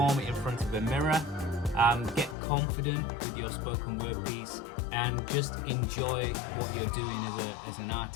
it in front of a mirror, get confident with your spoken word piece, and just enjoy what you're doing as an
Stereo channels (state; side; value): drops out; right; at 2.4 s